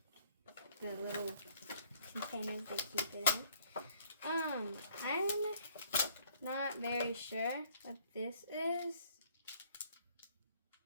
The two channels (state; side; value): inverted; both; correlation -0.61